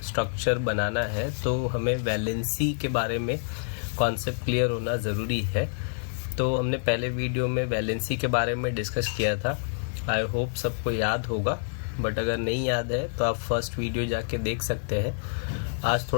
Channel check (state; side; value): silent; right; 60 dB below the other